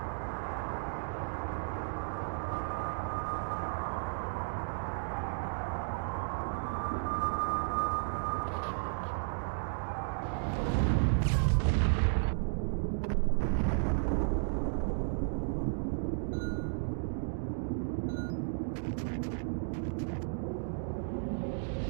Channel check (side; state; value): left; silent; digital silence